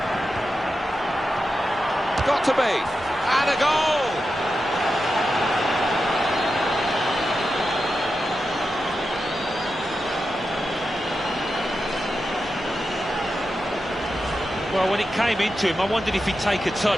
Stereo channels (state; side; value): normal; both; correlation 0.90